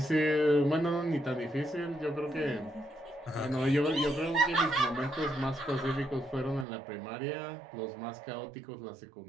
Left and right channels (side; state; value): left; drops out; at 6.7 s